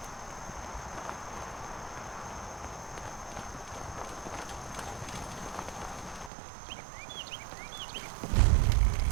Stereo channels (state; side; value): drops out; left; at 6.3 s